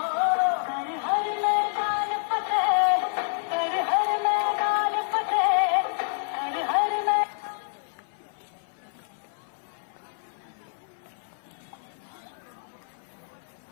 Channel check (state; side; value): silent; right; 56 dB below the other